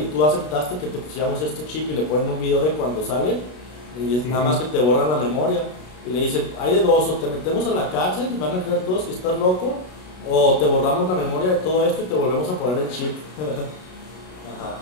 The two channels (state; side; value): late; right; 33 ms